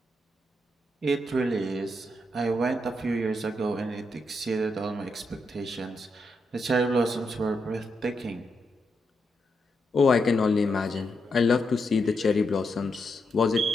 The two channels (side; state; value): both; normal; correlation 0.82